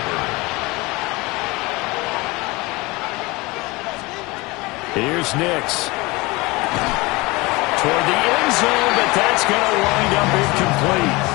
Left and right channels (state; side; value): quieter; right; 23.4 dB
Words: Here's Nix. Toward the end zone, but that's going to wind up incomplete.